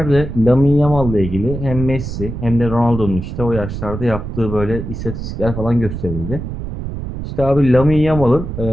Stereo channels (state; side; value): noise; right; rumble, 7 dB below the sound